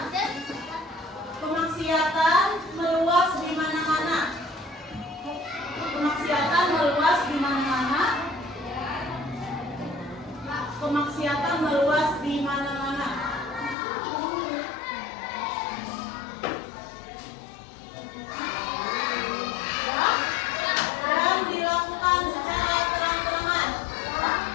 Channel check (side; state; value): right; drops out; at 13.8 s